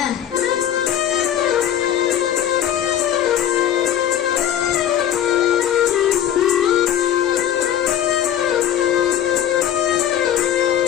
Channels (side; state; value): right; quieter; 10.5 dB